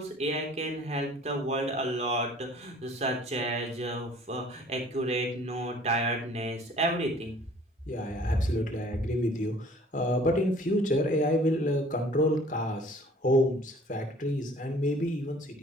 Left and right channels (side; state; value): both; normal; correlation 0.52